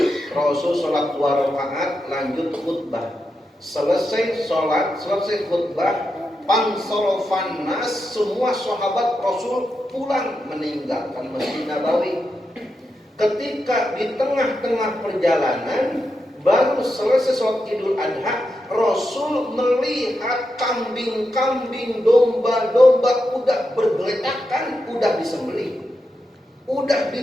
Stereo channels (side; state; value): both; normal; correlation 0.87